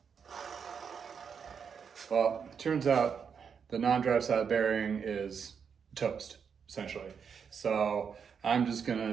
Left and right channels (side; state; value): left; quieter; 6.7 dB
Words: Well, it turns out the non-drive side bearing is toast, essentially. So I'm just